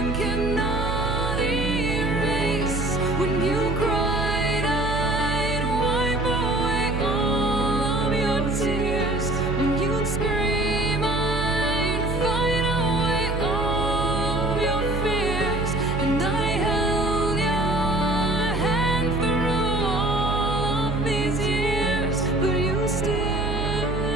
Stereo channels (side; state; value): right; noise; hum, 3 dB below the sound